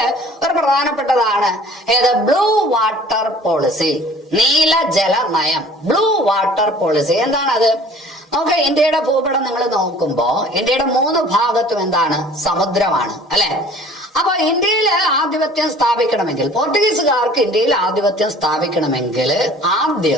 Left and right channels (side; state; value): both; normal; correlation 0.50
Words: ഒരു പ്രധാനപ്പെട്ടതാണ് ഏത്? ബ്ലൂ വാട്ടർ പോളിസി, നീല ജല നയം. ബ്ലൂ വാട്ടർ പോളിസി എന്താണത്? നമുക്ക് ഇന്ത്യയുടെ ഭൂപടം നിങ്ങൾ നോക്കുമ്പോ ഇന്ത്യയുടെ 3 ഭാഗത്തും എന്താണ്? സമുദ്രമാണ്, അല്ലെ? അപ്പൊ ഇന്ത്യയിൽ ആധിപത്യം സ്ഥാപിക്കണമെങ്കിൽ, പോർട്ടുഗീസുകാർക്ക് ഇന്ത്യയിൽ ആധിപത്യം സ്ഥാപിക്കണമെങ്കിൽ